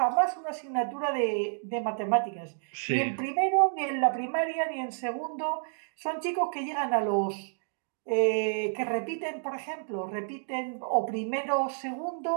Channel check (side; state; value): left; silent; digital silence